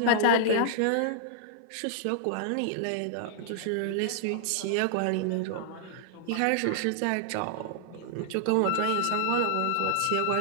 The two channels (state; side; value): different; both; correlation -0.01